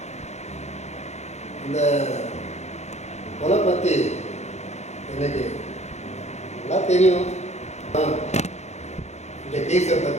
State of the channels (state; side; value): late; right; 0.32 ms